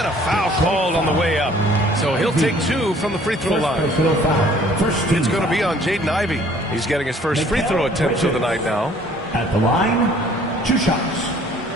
a foul called on the way up. So he'll take 2 from the free throw line. It's going to be on Jaden Ivey. He's getting his first free throw attempt of the night now. At the line, 2 shots.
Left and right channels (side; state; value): both; normal; correlation 0.56